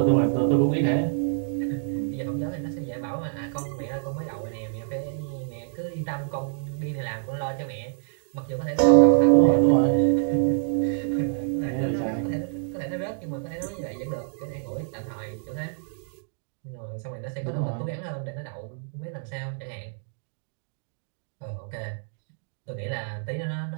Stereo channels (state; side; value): silent; left; digital silence